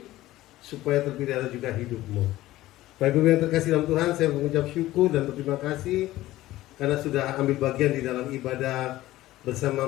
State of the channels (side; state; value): right; quieter; 16.1 dB